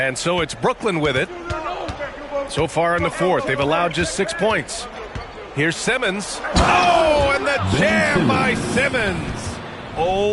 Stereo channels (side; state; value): both; identical; correlation 1.00